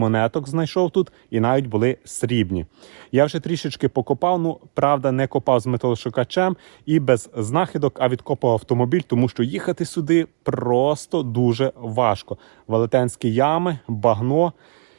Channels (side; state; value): left; silent; digital silence